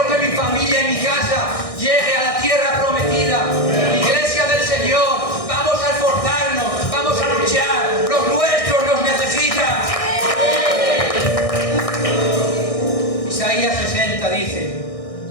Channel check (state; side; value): late; right; 1.6 ms